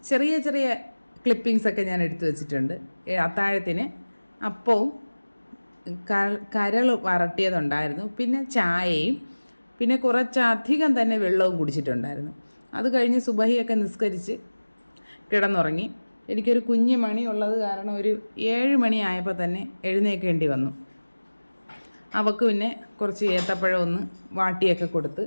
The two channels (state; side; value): inverted; both; correlation -1.00